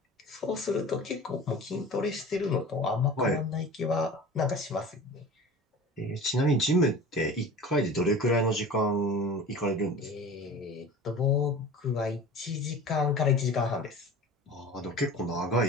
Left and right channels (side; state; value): both; normal; correlation 0.38